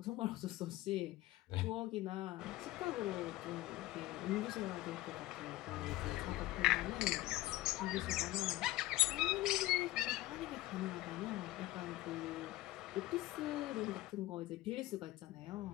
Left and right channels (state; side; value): quieter; right; 17.1 dB